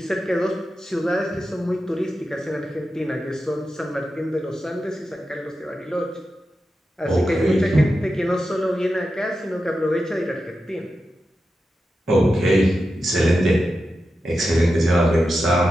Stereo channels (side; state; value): both; normal; correlation 0.90